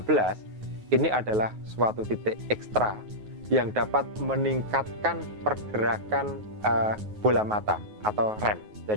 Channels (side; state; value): left; late; 9.4 ms